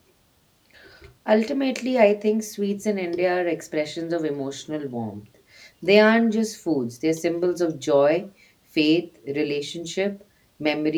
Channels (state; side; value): identical; both; correlation 1.00